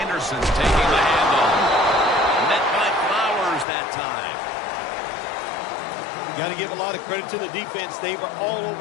taking the handoff. Met by Flowers that time. Got to give a lot of credit to the defense. They were all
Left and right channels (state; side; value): drops out; right; at 3.7 s